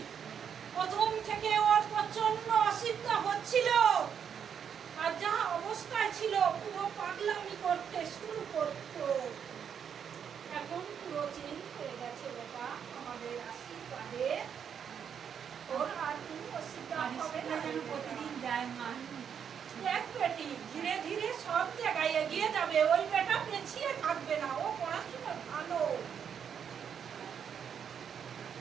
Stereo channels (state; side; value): quieter; left; 7.8 dB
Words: প্রথম থেকে ওর প্রচন্ড অসুবিধা হচ্ছিল, আর যা অবস্থায় ছিল পুরো পাগলামি করতে শুরু করতো। এখন পুরো চেঞ্জ হয়ে গেছে বাবা, আমাদের আশীর্বাদে ওর আর কোনো অসুবিধা হবে না। প্রতিদিন যায় মা। দেখ বেটি, ধীরে ধীরে সব জায়গায় এগিয়ে যাবে। ওই বেটা পেছিয়ে থাকবে না, ও পড়াশোনা ভালো।